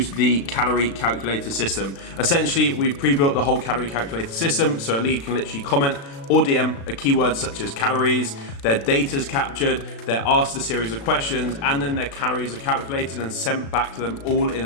the calorie calculator system. Essentially, we've pre-built the whole calorie calculator system, so a lead can literally comment or DM a keyword such as calories, their data's captured, they're asked a series of questions, and then their calories are calculated and sent back to them all in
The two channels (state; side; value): late; right; 36 ms